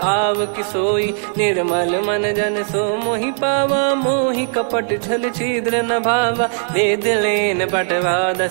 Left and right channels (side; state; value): left; silent; 65 dB below the other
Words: आव किसोई, निर्मल मन जन सो मोहि पावा, मोहि कपट छल छिद्र न भावा, वेद लेन बटवा